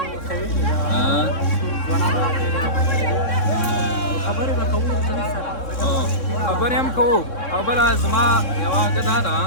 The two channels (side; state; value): right; late; 3.6 ms